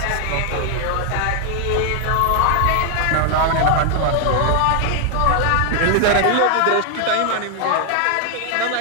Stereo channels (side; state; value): both; different; correlation 0.00